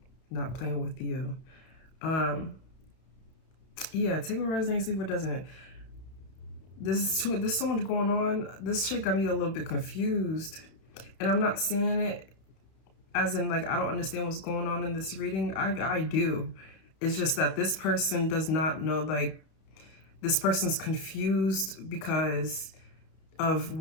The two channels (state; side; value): late; right; 31 ms